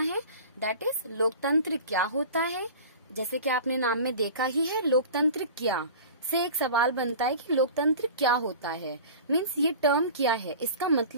दैट इज लोकतंत्र क्या होता है। जैसे कि आपने नाम में देखा ही है, लोकतंत्र क्या से एक सवाल बनता है कि लोकतंत्र क्या होता है, मीन्स ये टर्म क्या है, इसका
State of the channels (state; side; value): inverted; both; correlation -0.38